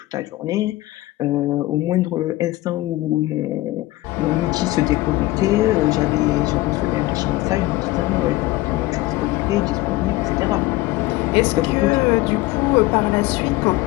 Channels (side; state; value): right; quieter; 18.7 dB